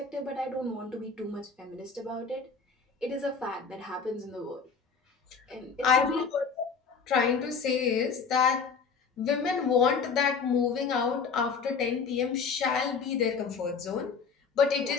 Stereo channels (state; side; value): quieter; right; 5.4 dB